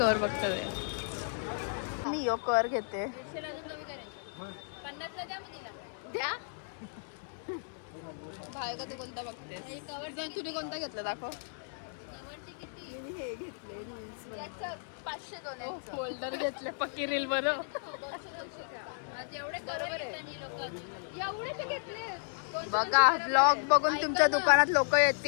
बघतो ते. मी यो कव्हर घेते. द्या भाविका तू कोणता बघतेस? तुम्ही कोणता घेतला दाखव. फोल्डर घेतले पक्की रील बरं. बघा ब्लॉग बघून तुमच्या दुकानात लोक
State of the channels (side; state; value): right; silent; digital silence